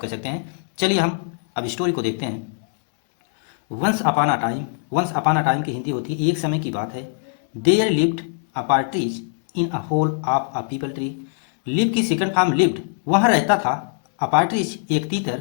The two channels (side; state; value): right; silent; 63 dB below the other